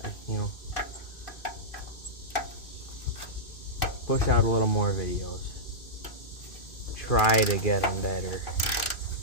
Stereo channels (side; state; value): right; late; 2.4 ms